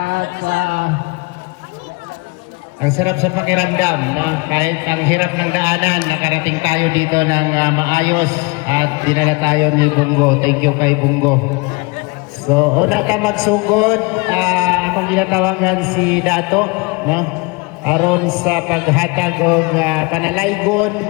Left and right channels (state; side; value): quieter; right; 27.9 dB